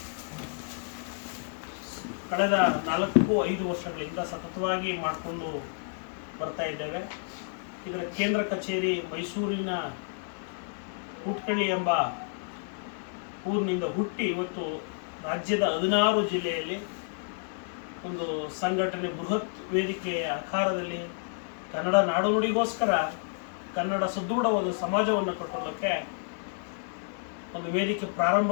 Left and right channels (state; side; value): silent; right; 58 dB below the other